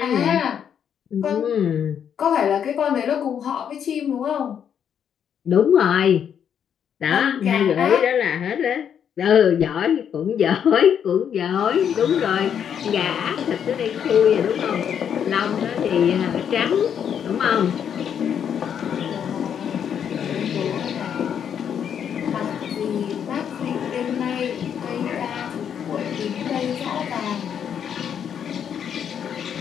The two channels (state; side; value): quieter; right; 8.4 dB